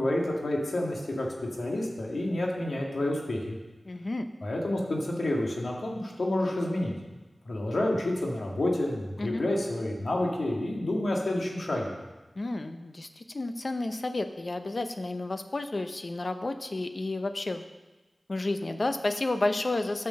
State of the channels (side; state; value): both; normal; correlation 0.97